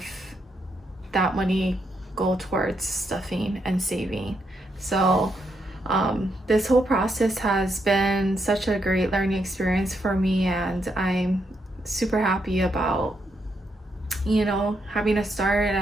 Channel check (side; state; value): both; normal; correlation 0.79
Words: that money go towards stuffing and saving. So this whole process has been such a great learning experience for me, and I'm super happy about having a start